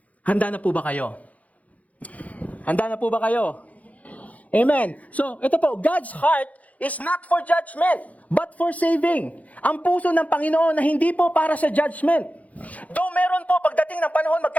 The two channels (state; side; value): late; right; 0.070 ms